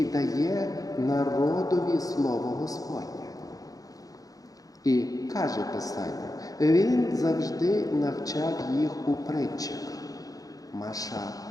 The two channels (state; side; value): late; right; 0.17 ms